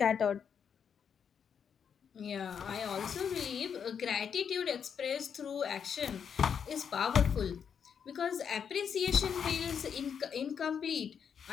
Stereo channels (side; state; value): right; quieter; 7.3 dB